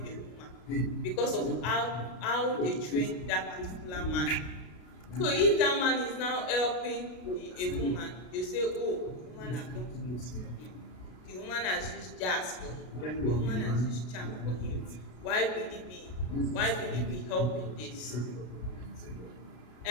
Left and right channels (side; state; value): right; late; 33 ms